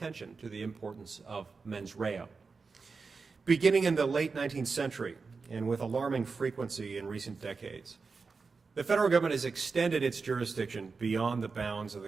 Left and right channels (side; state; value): left; quieter; 4.6 dB